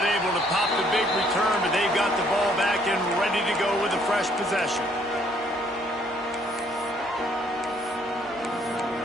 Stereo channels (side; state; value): both; normal; correlation 0.65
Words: able to pop the big return, but they've got the ball back and ready to go with a fresh possession.